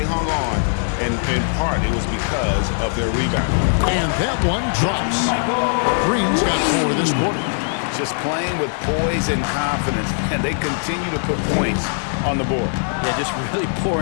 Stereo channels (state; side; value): silent; right; 66 dB below the other